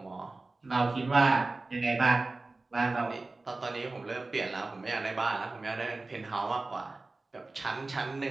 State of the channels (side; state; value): left; quieter; 3.3 dB